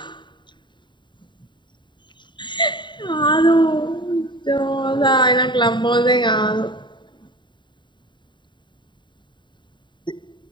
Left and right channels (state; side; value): late; right; 0.23 ms